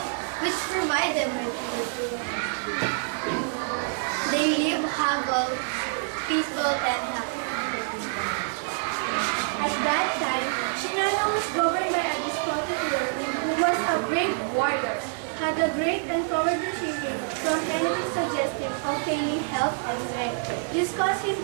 which provided them with food. They lived humble, peaceful, and happy. At that time, Shinano was governed by a despotic ruler who was a brave warrior, had a great and cowardly shrinking from anything suggestive of failing health and strength. This caused him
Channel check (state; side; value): silent; left; 60 dB below the other